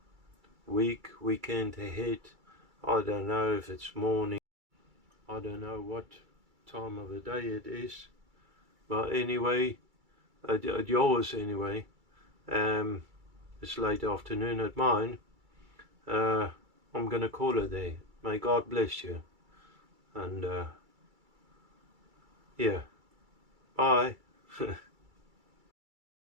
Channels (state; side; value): late; left; 2.3 ms